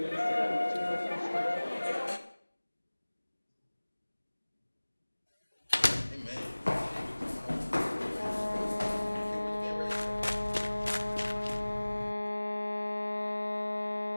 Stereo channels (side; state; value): both; inverted; correlation -1.00